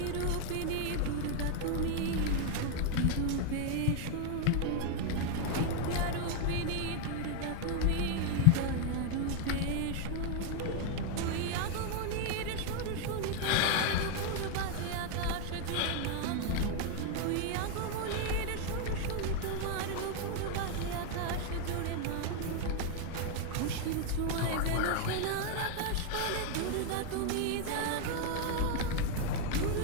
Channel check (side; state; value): both; different; correlation 0.00